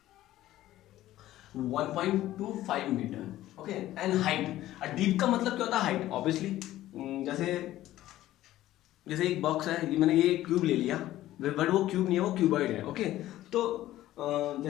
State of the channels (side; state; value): right; quieter; 14.5 dB